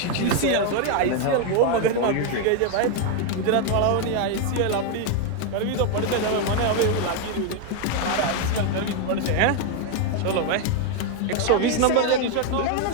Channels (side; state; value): both; different; correlation 0.01